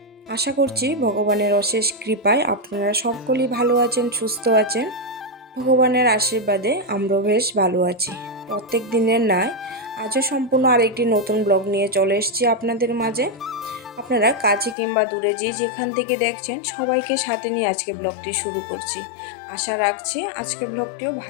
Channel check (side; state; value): right; drops out; at 14.8 s